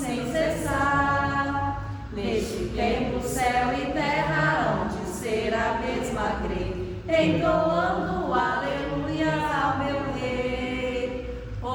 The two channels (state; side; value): identical; both; correlation 1.00